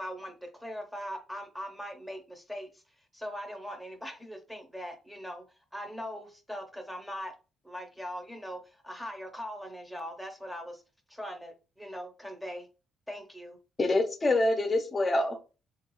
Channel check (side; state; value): both; normal; correlation 0.88